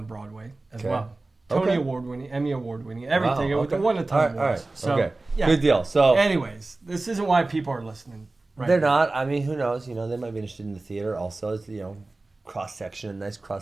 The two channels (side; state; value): left; quieter; 3.2 dB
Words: Broadway as well. Okay. Tony Award-winning, Emmy Award-winning, everything. Wow, It won a ton of all right. awards. So, okay. yeah. Good deal. So, Anyways, this isn't why people are listening. Right they're now. not. I mean, who knows? They might be interested in the theater also. It's, cross-section, nice